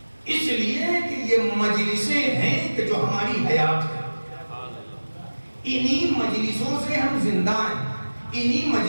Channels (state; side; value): inverted; both; correlation -1.00